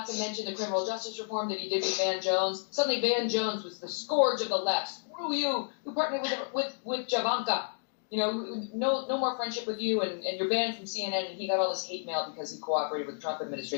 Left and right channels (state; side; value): silent; right; digital silence